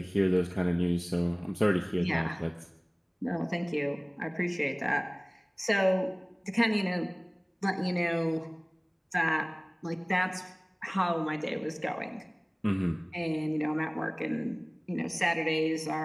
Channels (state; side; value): identical; both; correlation 1.00